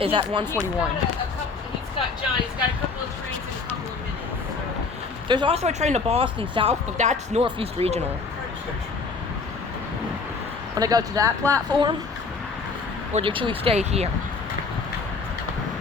at 1:41. He's got a couple of trains in a couple of minutes. So. There's also a train to Boston South, but that's Northeast Regional. Want to go to that platform? Or should we stay here?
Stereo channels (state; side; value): quieter; right; 4.5 dB